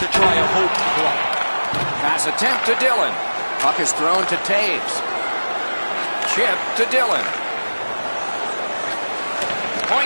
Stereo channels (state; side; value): inverted; both; correlation -1.00